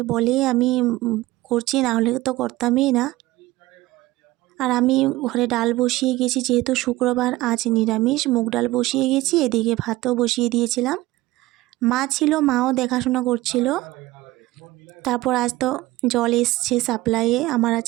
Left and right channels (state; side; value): quieter; left; 18.2 dB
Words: বলেই আমি করছি, না হলে তো করতামই না। আর আমি ঘরে ডাল বসিয়ে গেছি, যেহেতু শুক্রবার আজ নিরামিষ, মুগ ডাল বসিয়ে গেছি, এদিকে ভাতও বসিয়ে দিয়েছিলাম। মা ছিল, মাও দেখাশোনা করছিল। তারপর আজ তো জল এসছে সাপ্লাইয়ে, আমার আর